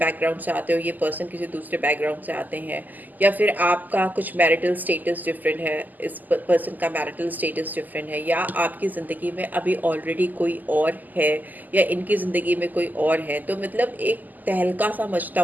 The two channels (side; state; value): left; late; 0.084 ms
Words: से आते हो, ये पर्सन किसी दूसरे बैकग्राउंड से आते हैं, या फिर आपका कुछ मैरिटल स्टेटस डिफरेंट है, इस पर्सन का मैरिटल स्टेटस डिफरेंट है, या आपकी ज़िंदगी में अभी ऑलरेडी कोई और है, या इनकी ज़िंदगी में कोई और है, तो मतलब एक तहलका सा मचता